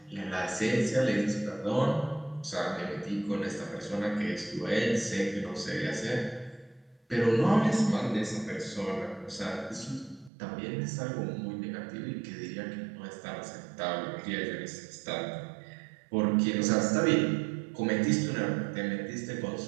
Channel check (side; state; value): left; drops out; at 10.3 s